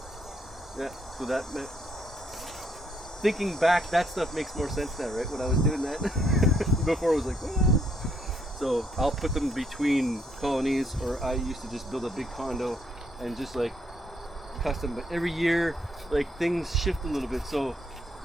Yeah. So that meant. Thinking back, that stuff makes more sense now, right? When I was doing that, before it was like, well. So I'll put them between colonies, or I used to just build a big condo and just like custom. But every year, like things shift a little bit, so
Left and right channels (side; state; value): both; normal; correlation 0.72